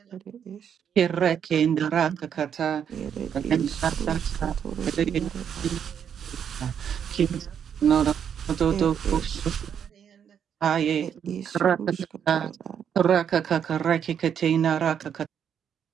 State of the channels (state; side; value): quieter; left; 8.2 dB